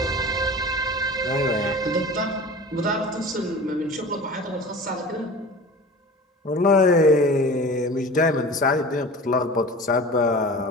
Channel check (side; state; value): both; normal; correlation 0.37